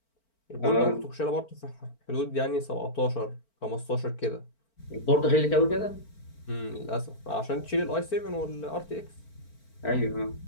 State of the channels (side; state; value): right; late; 4.4 ms